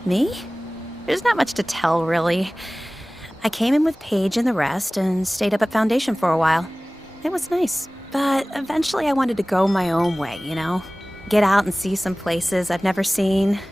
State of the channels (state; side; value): normal; both; correlation 0.98